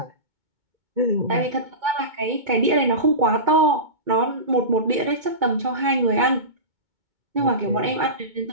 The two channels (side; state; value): left; late; 2.2 ms